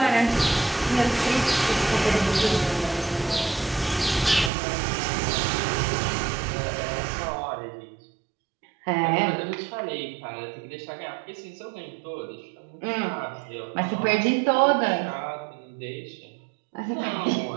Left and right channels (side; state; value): left; drops out; at 4.5 s